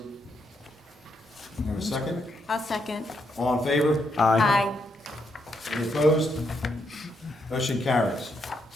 Have a second? I'll second. All in favor? Aye. Any opposed? Motion carries.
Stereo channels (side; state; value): both; normal; correlation 0.78